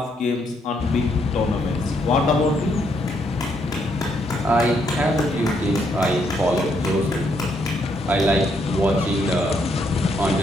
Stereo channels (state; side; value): normal; both; correlation 0.74